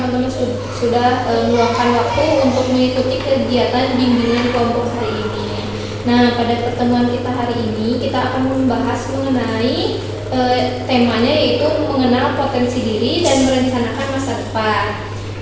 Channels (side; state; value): both; identical; correlation 1.00